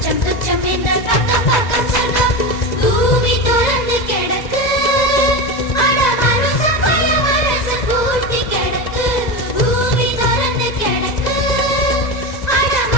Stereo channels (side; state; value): right; late; 2.0 ms